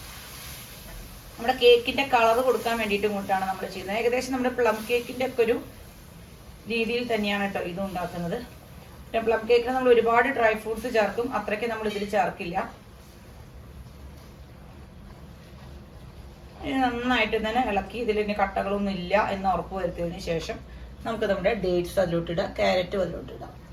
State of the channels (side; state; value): both; identical; correlation 1.00